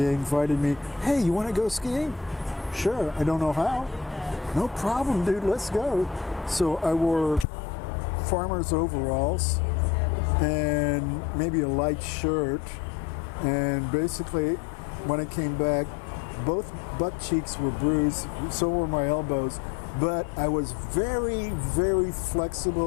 invited me, hey, you want to go skiing? Sure, I don't know how. No problem, dude, let's go. So I wore farmer's overalls and maybe a light shirt, and basically when I came back, both butt cheeks were bruised, so were my elbows, but I was very, very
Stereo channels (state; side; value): drops out; right; at 7.5 s